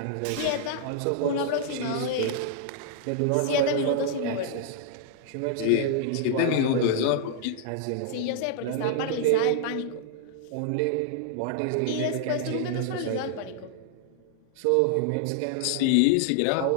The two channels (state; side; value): different; both; correlation -0.01